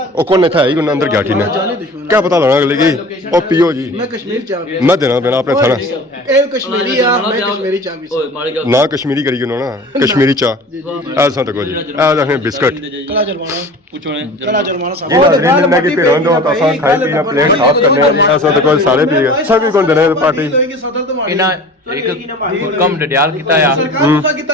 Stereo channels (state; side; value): normal; both; correlation 0.41